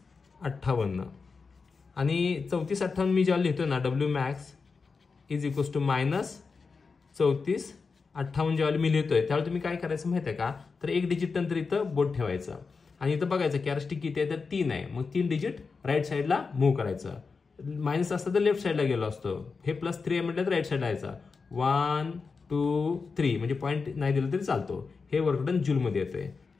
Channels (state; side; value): quieter; right; 4.8 dB